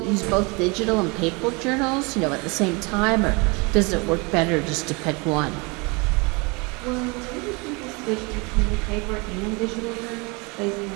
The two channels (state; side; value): quieter; left; 28.7 dB